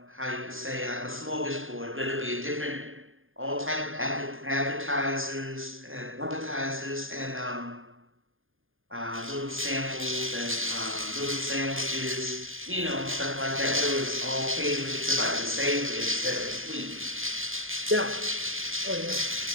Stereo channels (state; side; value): late; left; 0.59 ms